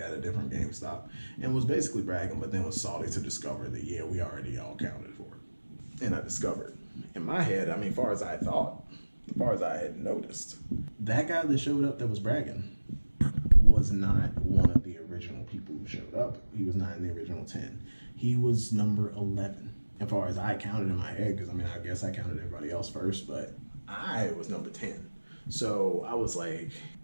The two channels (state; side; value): inverted; both; correlation -1.00